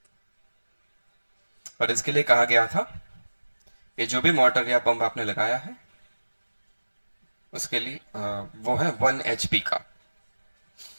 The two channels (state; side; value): inverted; both; correlation -1.00